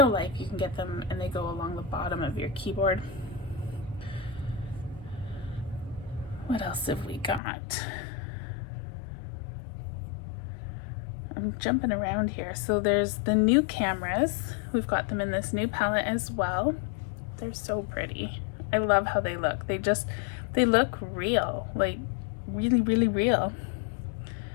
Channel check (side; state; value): right; drops out; at 7.4 s